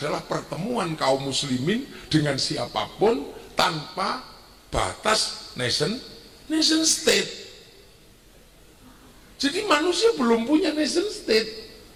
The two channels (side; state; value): both; identical; correlation 1.00